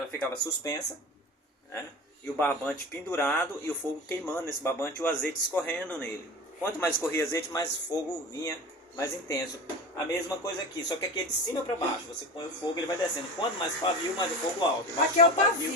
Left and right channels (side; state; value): both; normal; correlation 0.30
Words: ficava suspensa, né? E o barbante pendurado e o fogo queimando nesse barbante e o azeite escorrendo nele. Quanto mais escorria azeite, mais fogo vinha mais intenso. A mesma coisa aqui, só que aqui é de cima para baixo. Você põe o fogo, ele vai descendo. Quanto mais pavio, mais o fogo alto. Aqui é o